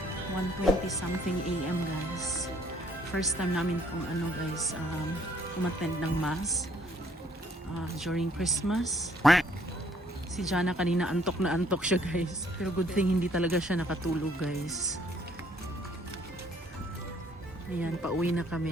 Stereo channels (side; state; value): both; normal; correlation 0.64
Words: 1:20 something AM guys. First time namin kung ano guys, umattend ng mass during Christmas. Si Jana kanina antok na antok siya guys. Pero good thing hindi talaga siya nakatulog guys. Ayan, pauwi na